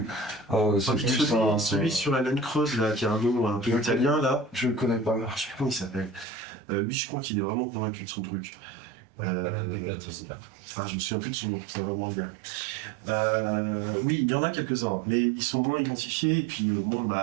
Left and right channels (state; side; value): drops out; left; at 6.2 s